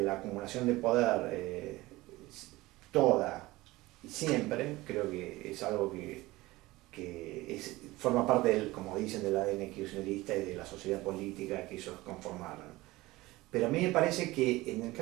la acumulación de poder toda y siempre, creo que es algo que forma parte como dicen, del ADN kirchnerista y de la sociedad política que ellos conformaron. Pero a mí me parece que en el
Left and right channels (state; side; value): quieter; left; 19.5 dB